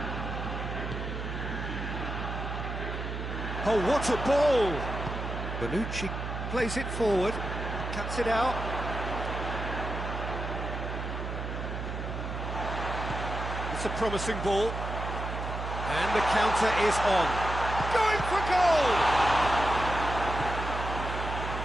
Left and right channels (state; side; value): noise; right; hum, 5 dB below the sound